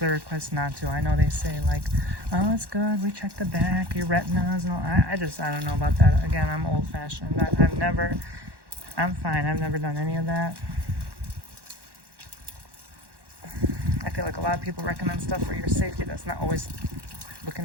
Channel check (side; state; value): left; late; 1.1 ms